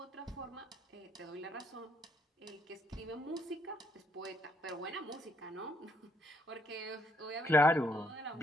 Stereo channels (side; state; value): both; normal; correlation 0.72